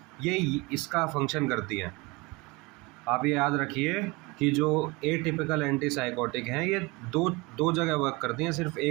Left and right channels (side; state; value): left; quieter; 24.4 dB